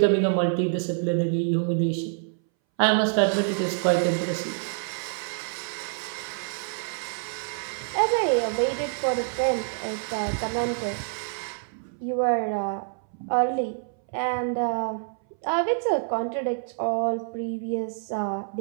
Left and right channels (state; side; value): silent; left; 60 dB below the other